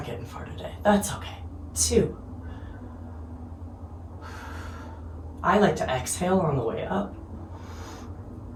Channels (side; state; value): both; identical; correlation 1.00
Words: getting far today. That's okay. 2. I like to exhale on the way up.